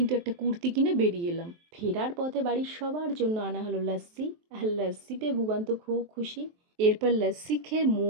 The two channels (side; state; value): left; late; 23 ms